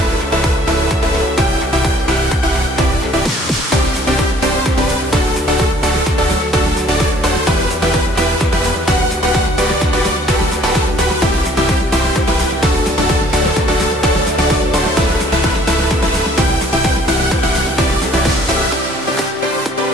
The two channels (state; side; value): normal; both; correlation 0.58